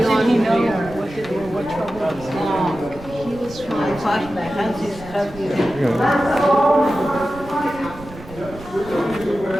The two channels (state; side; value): noise; right; rumble, 16 dB below the sound